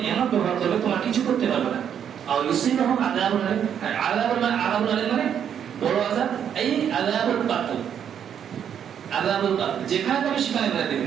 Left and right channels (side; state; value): left; quieter; 8.7 dB